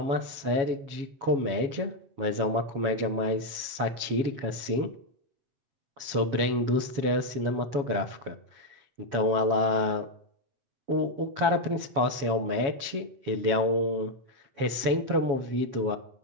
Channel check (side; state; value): left; late; 7.2 ms